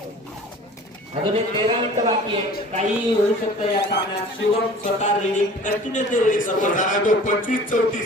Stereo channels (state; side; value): normal; both; correlation 0.45